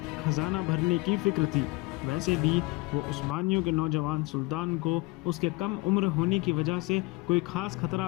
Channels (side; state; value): right; quieter; 23.9 dB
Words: خزانہ بھرنے کی فکر تھی۔ ویسے بھی وہ عثمانیوں کے نوجوان سلطان کو اس کے کم عمر ہونے کی وجہ سے کوئی خاص خطرہ